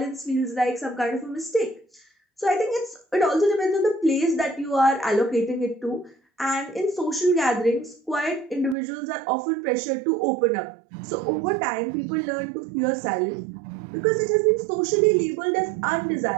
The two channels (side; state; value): left; drops out; at 8.8 s